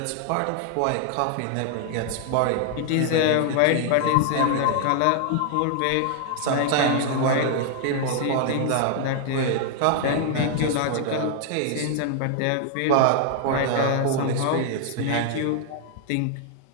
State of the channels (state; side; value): different; both; correlation 0.00